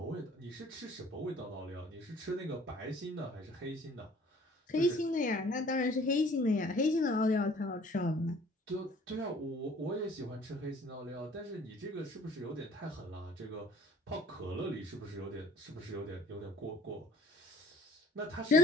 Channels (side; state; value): both; normal; correlation 0.53